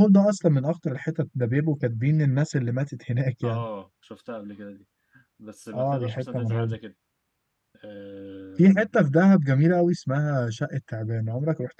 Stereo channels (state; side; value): identical; both; correlation 1.00